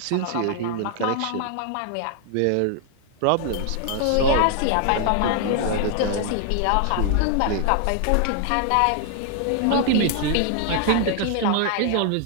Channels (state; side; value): different; both; correlation 0.00